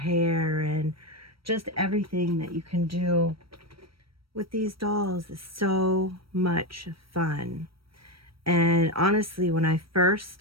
and just everything that you can do with these dolls is so much fun. And honestly, when I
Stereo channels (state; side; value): late; left; 0.75 ms